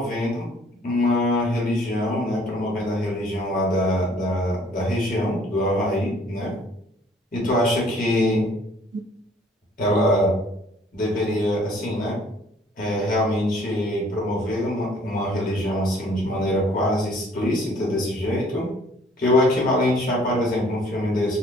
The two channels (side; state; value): both; normal; correlation 0.58